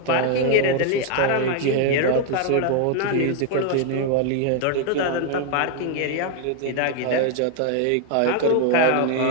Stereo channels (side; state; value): both; different; correlation 0.00